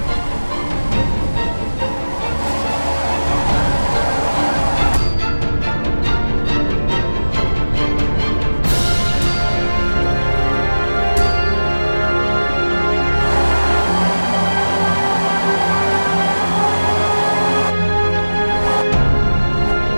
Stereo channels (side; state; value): both; inverted; correlation -1.00